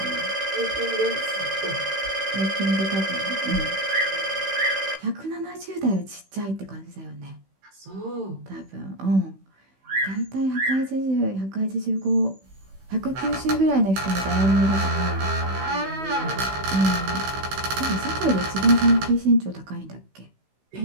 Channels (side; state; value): left; late; 16 ms